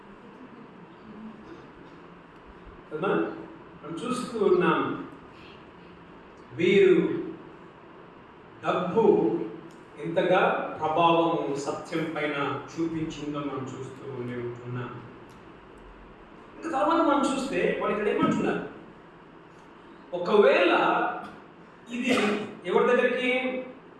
కదా. మనం చూస్తూ ఉన్నాం, వీరు డబ్బు ఎంతగా ప్రభావము సత్యం పైన చూపించిందో మనం చూస్తూ ఉంటున్నాం. ఇంకా తర్వాత మనం చూస్తే వాళ్ళు ఇక్కడ ఏమంటున్నారు, ఒకవేళ ఇది ఎవరి దగ్గరికి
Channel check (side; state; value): both; identical; correlation 1.00